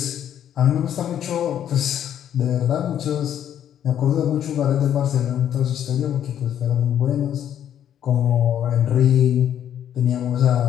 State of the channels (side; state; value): right; quieter; 10.1 dB